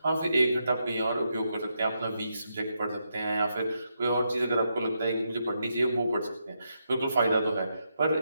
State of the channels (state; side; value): inverted; both; correlation -0.82